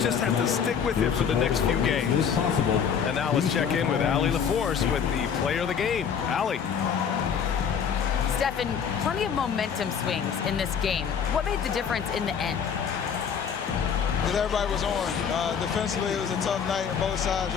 just have to stick with it for the next few games. And now let's check in with Allie LaForce with the player of the game. Allie. Stephen, plenty of momentum swings in this game. What made the difference in the end? Because everybody was on. Defensively, it was a tough night on both sides,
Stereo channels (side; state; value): right; quieter; 7.3 dB